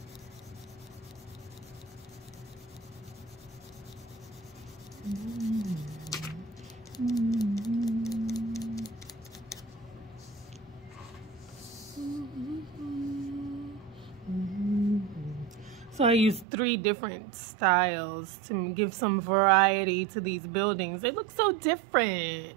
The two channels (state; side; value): drops out; left; at 16.4 s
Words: So I used 3 different styles to give some variety to these buildings. They look so